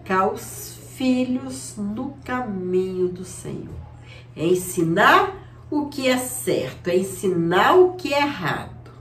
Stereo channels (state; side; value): identical; both; correlation 1.00